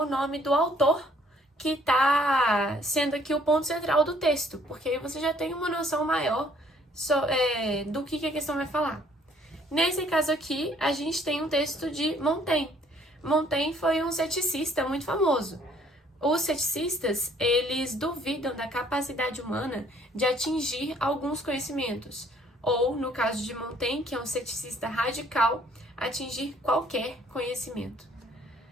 nome do autor que está sendo aqui o ponto central do texto, porque aí você já tem uma noção maior do que a questão vai falar. Nesse caso aqui, a gente tem um texto de Montaigne. Montaigne foi um ceticista muito famoso. Os ceticistas, eles duvidam da capacidade humana de atingir alguns conhecimentos, ou, no caso de Montaigne, que é um ceticista radical, atingir qualquer conhecimento.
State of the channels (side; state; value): both; normal; correlation 0.61